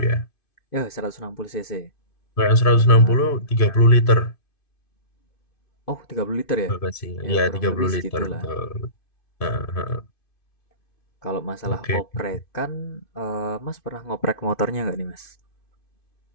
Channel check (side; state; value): right; late; 2.5 ms